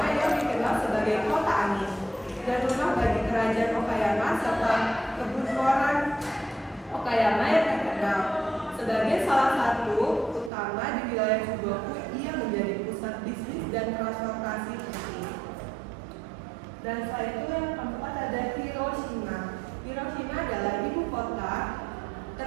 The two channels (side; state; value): left; drops out; at 10.5 s